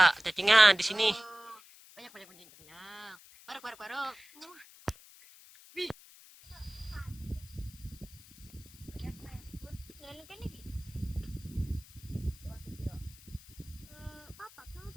cacingnya di sini? Banyak. Parok.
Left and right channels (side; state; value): left; noise; hiss, 21 dB below the sound